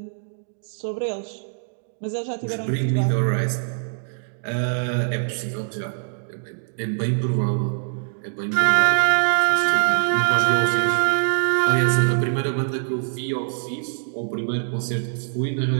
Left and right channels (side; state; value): left; silent; digital silence